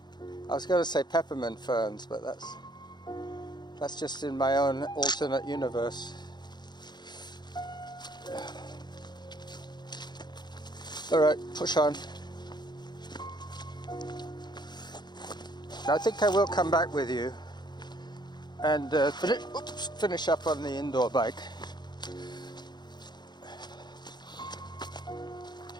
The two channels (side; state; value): right; late; 0.21 ms